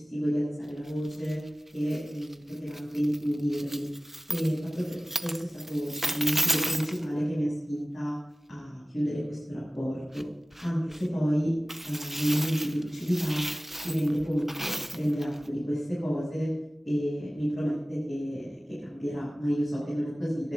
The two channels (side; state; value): both; normal; correlation 0.97